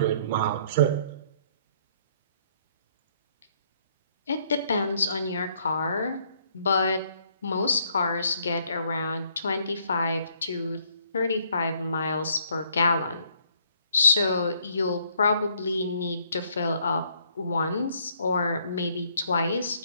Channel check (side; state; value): both; inverted; correlation -0.67